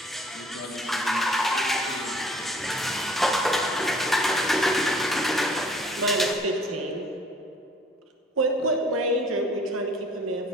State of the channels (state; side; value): normal; both; correlation 0.54